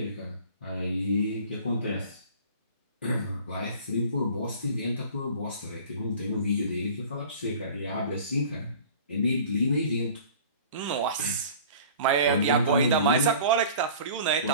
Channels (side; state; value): both; inverted; correlation -0.44